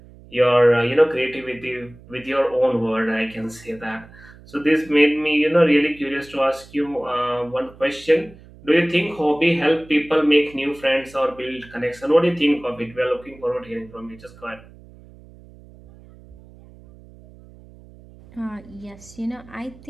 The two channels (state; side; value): noise; right; hum, 22 dB below the sound